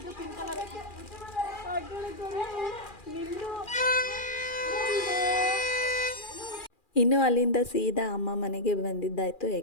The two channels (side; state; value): right; late; 2.4 ms